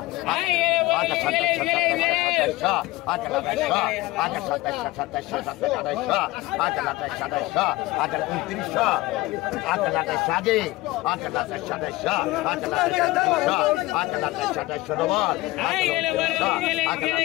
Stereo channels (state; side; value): quieter; right; 19.5 dB